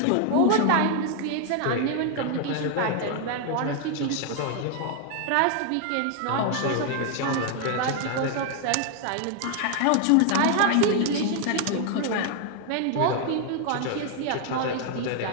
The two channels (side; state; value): both; different; correlation 0.00